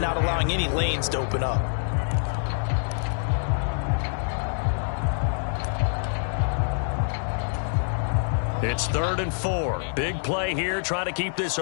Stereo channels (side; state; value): right; silent; digital silence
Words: not allowing any lanes to open up. It's 3rd and 4. Big play here, trying to keep this